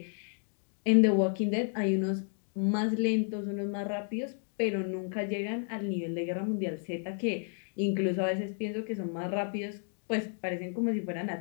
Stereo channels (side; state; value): right; silent; 56 dB below the other